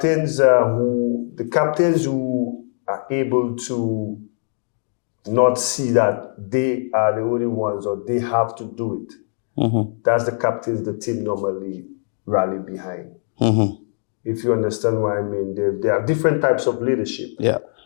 who are able to not see that they are the only ones or they have to do it. That's the captains the team normally rally behind. If you understand what I mean, there are different types of leadership. Yeah.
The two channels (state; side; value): silent; right; digital silence